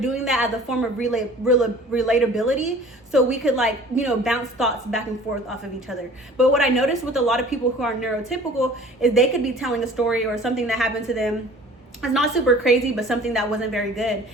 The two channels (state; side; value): normal; both; correlation 0.47